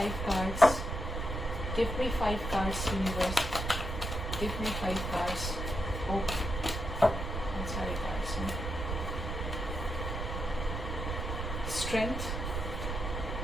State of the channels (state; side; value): noise; right; rumble, 3 dB below the sound